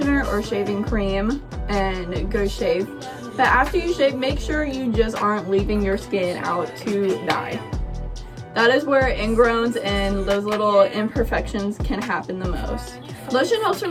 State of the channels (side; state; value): both; identical; correlation 1.00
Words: or shaving cream and go shave. But after you shave, make sure you just aren't leaving your skin out to die. That is where ingrowns and those little imperfections can happen the most. Lotion helps for